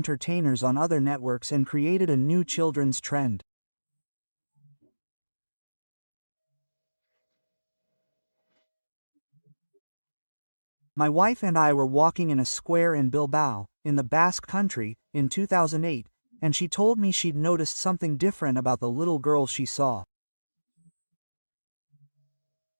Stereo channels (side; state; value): both; inverted; correlation -1.00